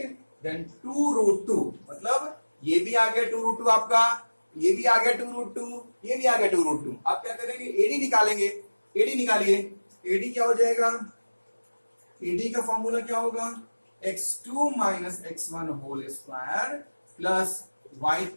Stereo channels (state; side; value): inverted; both; correlation -1.00